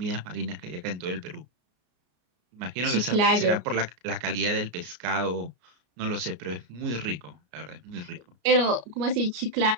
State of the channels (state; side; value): late; left; 33 ms